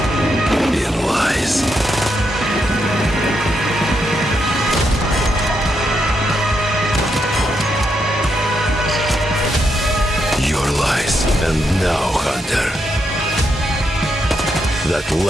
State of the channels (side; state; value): both; normal; correlation 0.81